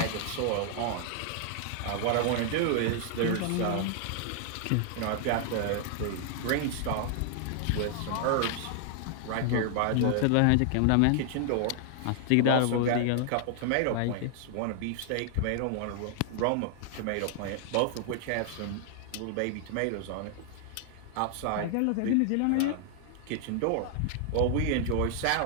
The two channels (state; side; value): different; both; correlation 0.00